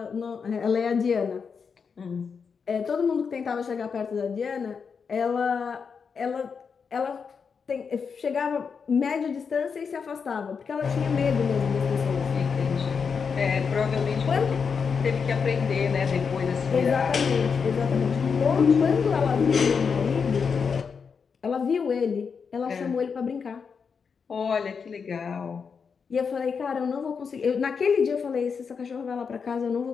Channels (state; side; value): quieter; right; 5.9 dB